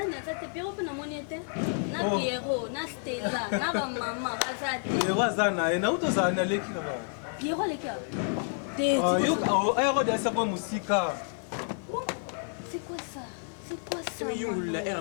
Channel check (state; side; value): silent; right; 58 dB below the other